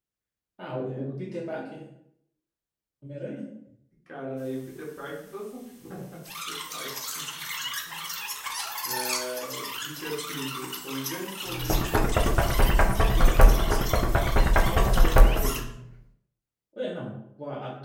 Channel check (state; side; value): identical; both; correlation 1.00